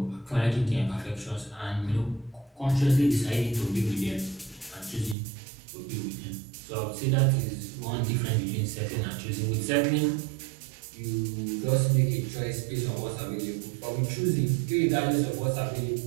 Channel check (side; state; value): left; drops out; at 5.2 s